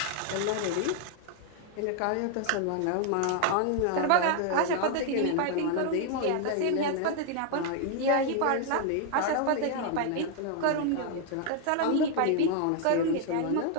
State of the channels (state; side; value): different; both; correlation 0.00